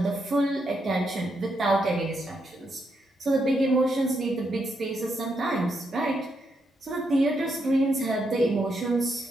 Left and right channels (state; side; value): normal; both; correlation 0.80